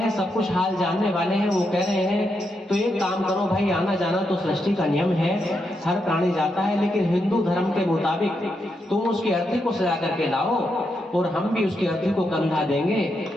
सब कुछ हाल जानने वाले हैं। वो कह रहे हैं, तो एक काम करो भाई, आना जाना तो सृष्टि का नियम है, हर प्राणी जाता है, लेकिन हिंदू धर्म के मुताबिक तुम उसकी अर्थी को सजा करके लाओ, और हम भी उसकी अर्थी को कंधा देंगे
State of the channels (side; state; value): both; normal; correlation 0.82